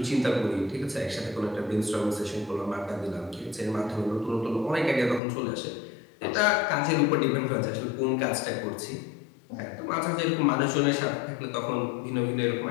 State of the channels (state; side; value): drops out; right; at 5.2 s